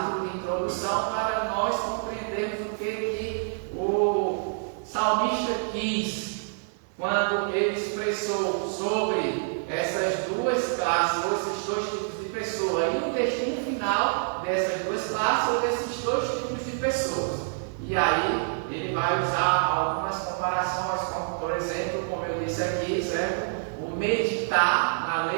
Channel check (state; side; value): silent; left; digital silence